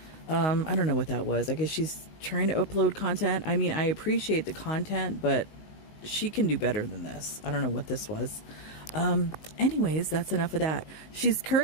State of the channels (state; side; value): late; right; 19 ms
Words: I don't know what that was. I guess she's trying to upload content. I mean, I appreciate the content, but she can do better than this. I don't know what this was. Anyways, that's enough of that. She's